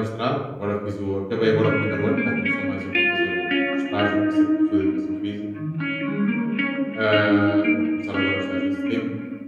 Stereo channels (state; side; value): identical; both; correlation 1.00